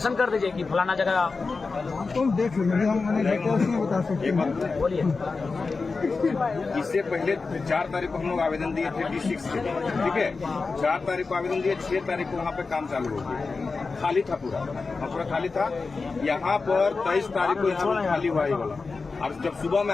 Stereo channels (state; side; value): quieter; right; 4.2 dB